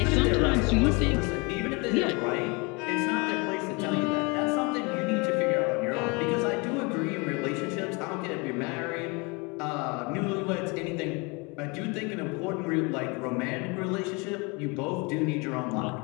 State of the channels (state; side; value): quieter; right; 29.0 dB